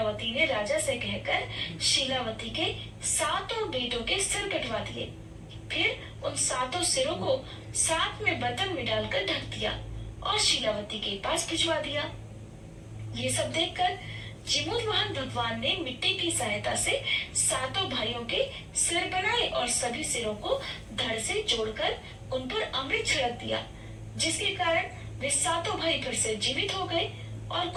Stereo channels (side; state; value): both; identical; correlation 1.00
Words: ने राजा से कहकर शीलावती के 7 बेटों के सिर कटवा दिए। फिर उन 7 सिरों को साथ में बर्तन में डालकर ढक दिया और शीलावती के पास भिजवा दिया। ये सब देखकर जिमुतवाहन भगवान ने मिट्टी की सहायता से 7 भाइयों के सिर बनाए और सभी सिरों को धड़ से जोड़कर उन पर अमृत छिड़क दिया, जिसके कारण वे 7 भाई फिर से जीवित हो गए और